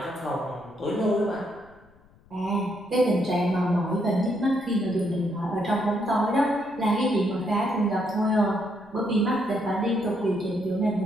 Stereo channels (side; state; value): left; noise; rumble, 28 dB below the sound